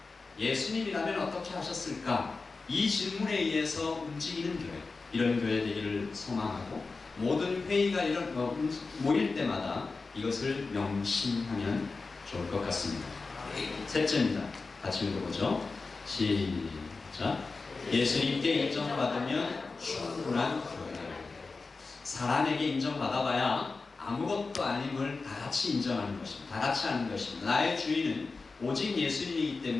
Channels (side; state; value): right; quieter; 4.0 dB